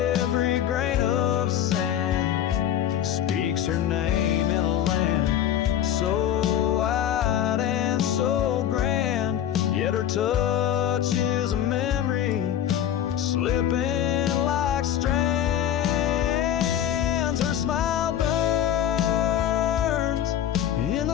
grain of sand speaks her name in a land so wide and so grand. Yet her touch is a memory slipping like strands. Her smile burns in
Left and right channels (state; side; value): quieter; right; 10.4 dB